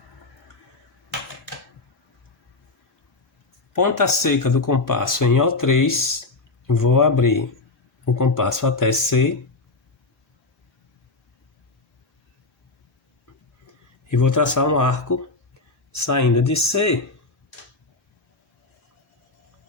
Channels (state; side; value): quieter; right; 3.4 dB